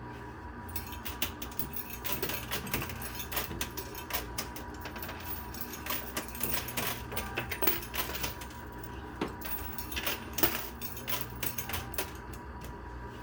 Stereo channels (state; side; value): identical; both; correlation 1.00